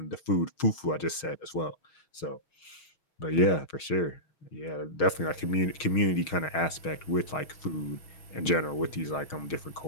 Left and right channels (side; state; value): right; late; 6.4 ms